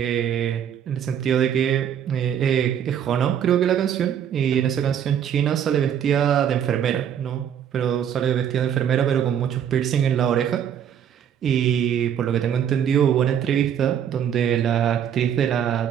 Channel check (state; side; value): quieter; left; 9.1 dB